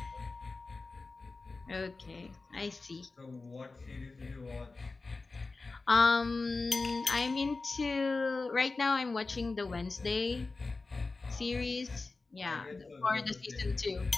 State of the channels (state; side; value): quieter; right; 3.7 dB